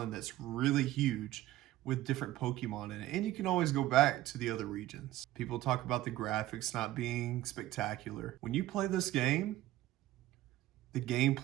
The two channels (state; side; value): quieter; left; 15.2 dB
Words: that's really huge with different Pokemon in it. And you can always go back to the other regions. People talk about the graphics not being spectacular. When you play this game, the